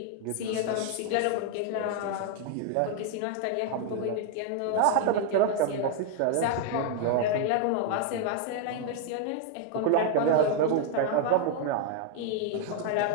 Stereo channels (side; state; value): both; different; correlation 0.00